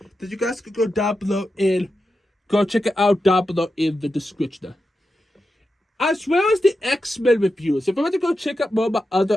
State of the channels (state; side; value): normal; both; correlation 0.89